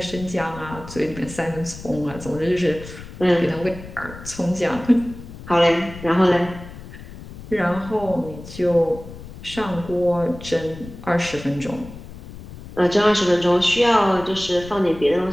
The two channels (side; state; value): left; noise; rumble, 14 dB below the sound